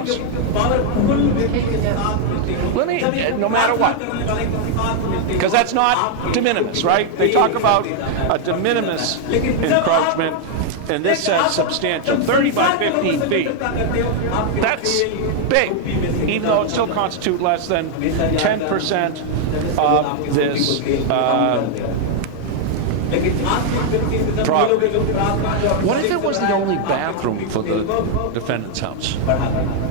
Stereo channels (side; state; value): both; different; correlation 0.00